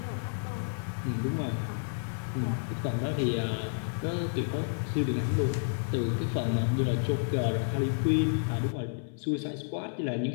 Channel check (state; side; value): silent; right; 57 dB below the other